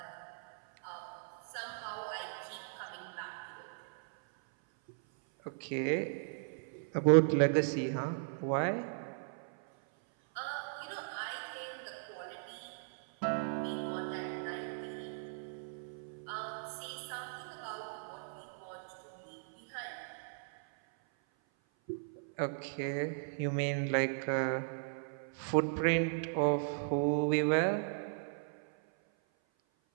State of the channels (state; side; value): silent; left; 53 dB below the other